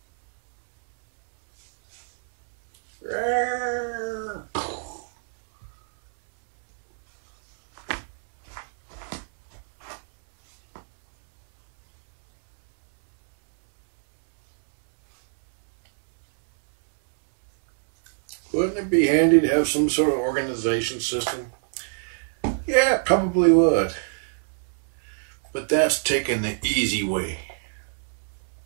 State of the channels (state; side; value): silent; left; 62 dB below the other